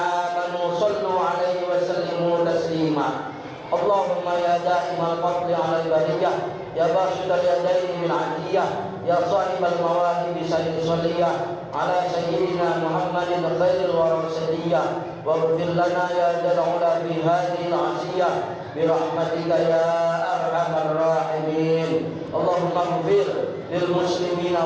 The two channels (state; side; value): identical; both; correlation 1.00